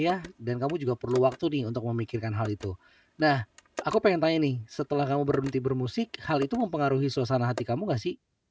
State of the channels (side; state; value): both; identical; correlation 1.00